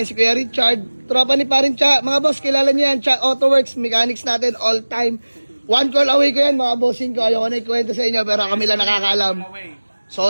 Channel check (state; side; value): inverted; both; correlation -1.00